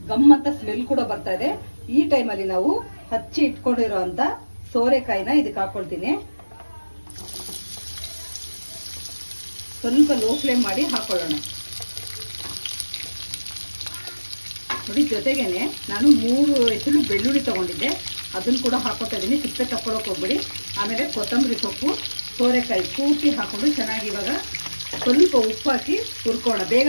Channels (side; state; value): both; inverted; correlation -1.00